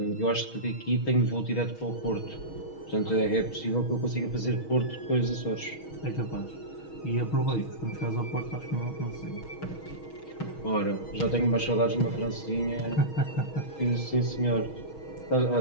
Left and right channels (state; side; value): late; right; 6.3 ms